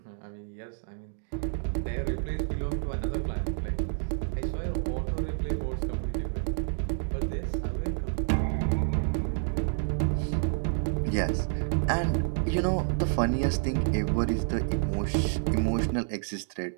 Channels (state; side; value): silent; left; digital silence